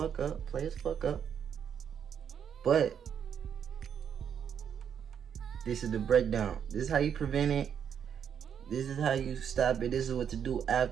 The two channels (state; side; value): quieter; left; 8.1 dB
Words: up. But this is the breakdown. This is how you prevent it. This is how you stop it. This is what to do